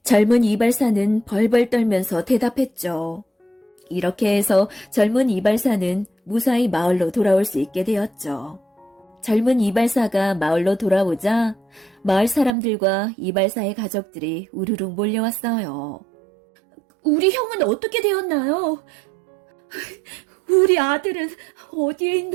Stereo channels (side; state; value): left; drops out; at 12.6 s